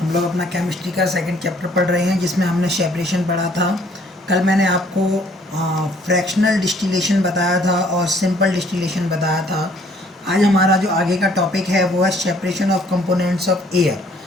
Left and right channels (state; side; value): normal; both; correlation 0.61